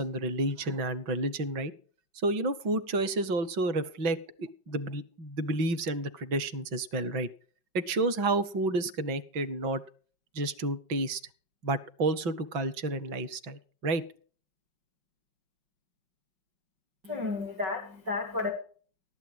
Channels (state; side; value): late; left; 5.4 ms